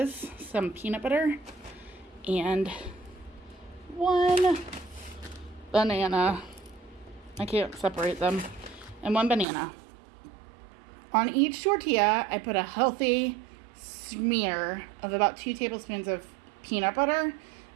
some peanut butter, and 1 banana. I can't separate them. And 1 banana. On each tortilla, I put a healthy smear of about 2 tablespoons of peanut butter.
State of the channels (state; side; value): drops out; left; at 9.5 s